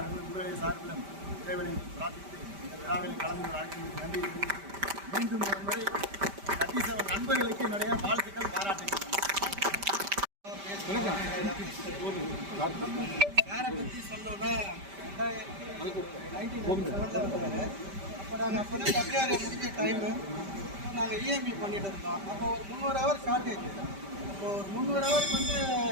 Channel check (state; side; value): late; left; 5.1 ms